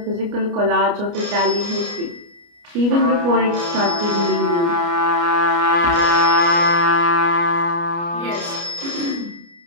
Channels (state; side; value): late; left; 29 ms